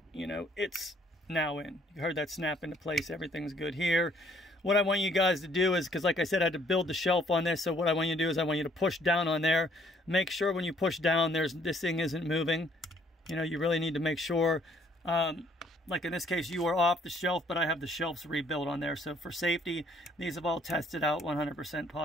you know, it's now in. You heard that snap into place, everything's good here. What I want you guys to do is, because like I said, I had to build the shelf on this, so what I want you to do is I want you to push down on there. Make sure when you push down, this thing isn't moving. You know, you really need to make sure, like in this case, you are off the shelf, but I have the shelves rebuilt on there. So for safety, these have all tested out 100%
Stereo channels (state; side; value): normal; both; correlation 0.63